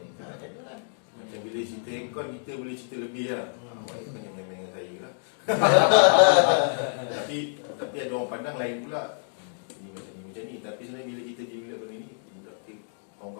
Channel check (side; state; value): right; silent; digital silence